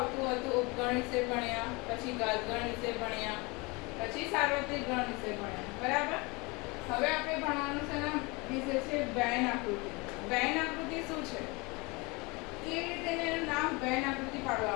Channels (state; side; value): quieter; right; 26.4 dB